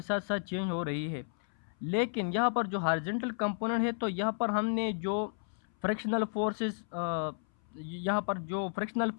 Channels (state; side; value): silent; right; 56 dB below the other